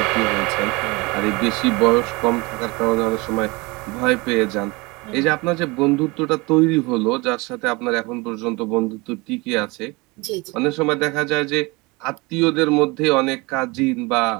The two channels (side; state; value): left; quieter; 25.2 dB